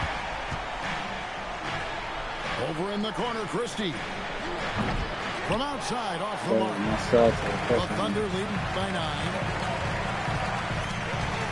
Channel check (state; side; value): identical; both; correlation 1.00